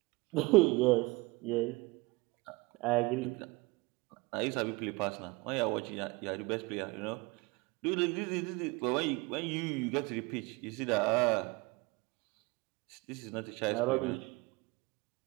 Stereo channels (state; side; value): quieter; left; 24.1 dB